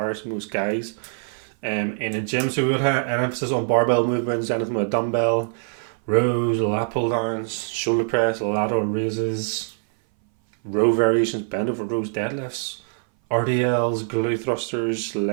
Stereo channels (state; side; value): silent; left; 59 dB below the other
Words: most guys in a gym. So we would have an emphasis on barbell movements, anything with a dumbbell, rows, lat pull downs, shoulder press, lateral raises, row variations, bend over rows, deadlifts, RDLs, glute thrusters,